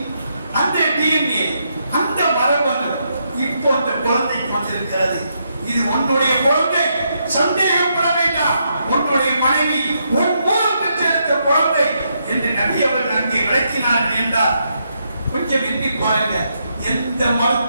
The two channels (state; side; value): inverted; both; correlation -0.79